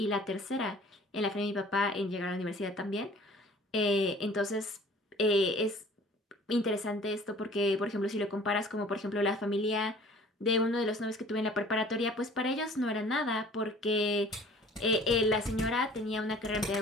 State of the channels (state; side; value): normal; both; correlation 0.49